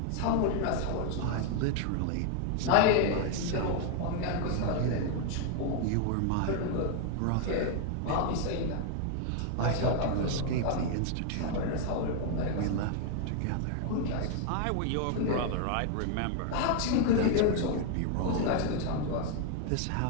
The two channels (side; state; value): both; different; correlation 0.00